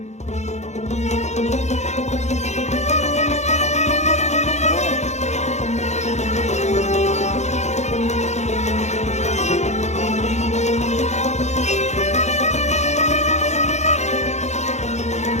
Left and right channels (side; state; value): right; late; 0.33 ms